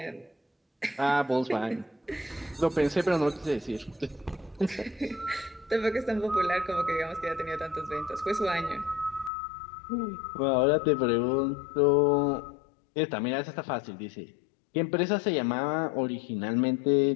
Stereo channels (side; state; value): right; drops out; at 9.3 s